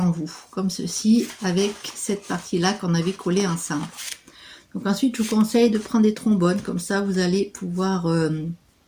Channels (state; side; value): identical; both; correlation 1.00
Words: vous, comme ceci, avec cette partie-là qu'on avait collé ensemble. Donc ensuite, je vous conseille de prendre des trombones, comme ça vous allez pouvoir